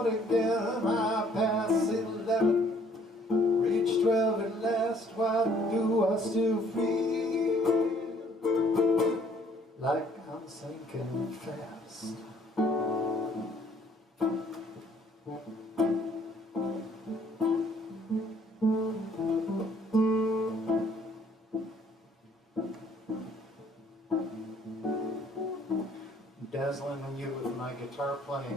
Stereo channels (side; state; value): both; normal; correlation 0.61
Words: again. I pass 11, reach 12 at last. Why do I still feel like I'm sinking fast? Dazzling you with my guitar